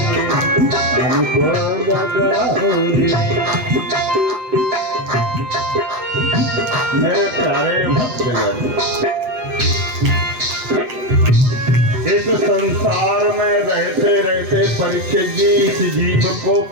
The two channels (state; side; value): late; left; 8.1 ms